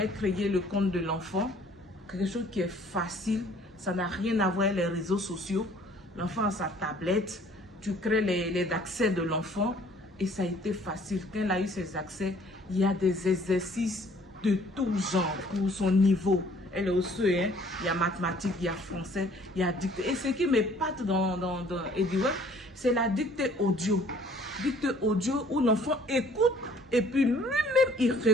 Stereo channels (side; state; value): both; normal; correlation 0.56